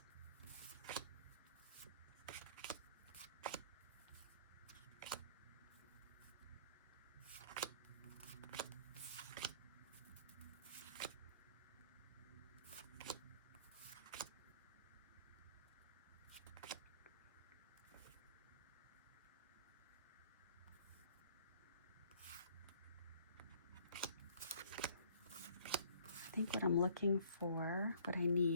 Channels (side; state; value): both; inverted; correlation -0.57